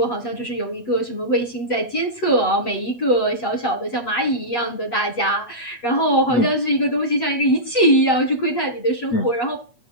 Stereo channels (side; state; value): right; late; 8.4 ms